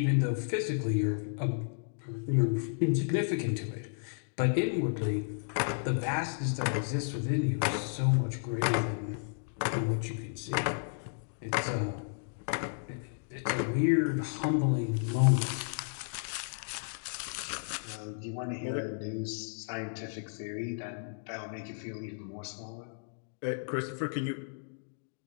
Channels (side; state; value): right; silent; digital silence